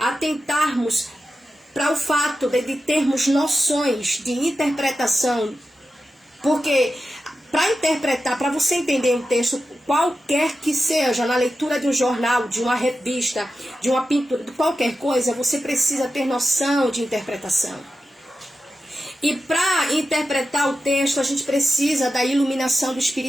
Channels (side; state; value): both; normal; correlation 0.91